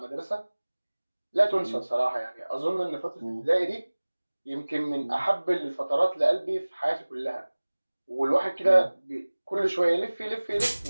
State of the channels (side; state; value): both; inverted; correlation -1.00